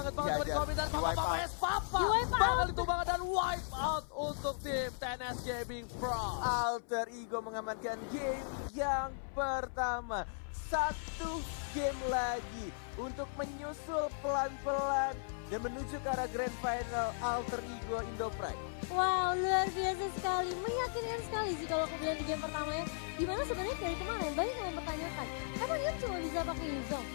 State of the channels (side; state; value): right; silent; 53 dB below the other